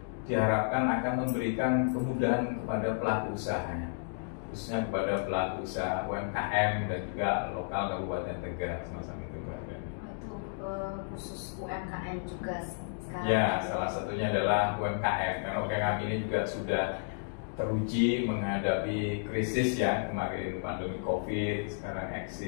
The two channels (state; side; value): silent; right; digital silence